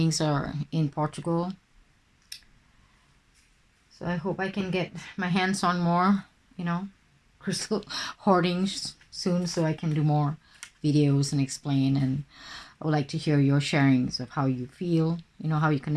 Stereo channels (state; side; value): identical; both; correlation 1.00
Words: are in Portugal. So I hope I can get my hands on more, you know, crystal hoarding soon, so I can do more videos and explain. And I would like to hear your sharings of how you feel, you know, how you